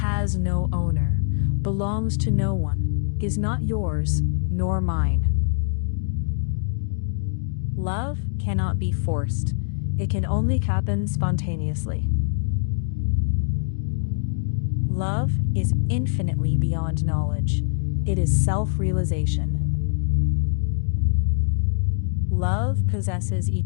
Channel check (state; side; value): silent; right; digital silence